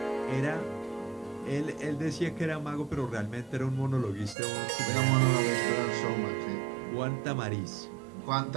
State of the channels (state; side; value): drops out; left; at 4.4 s